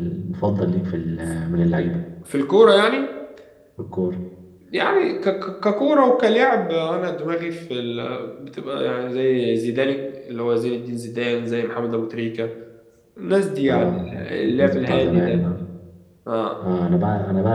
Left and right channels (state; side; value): identical; both; correlation 1.00